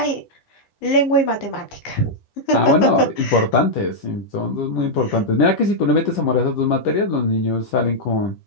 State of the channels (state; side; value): late; right; 10 ms